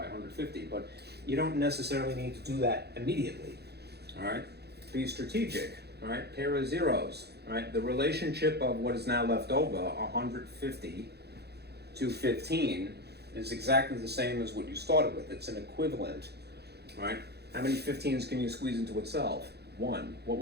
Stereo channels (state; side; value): late; left; 0.48 ms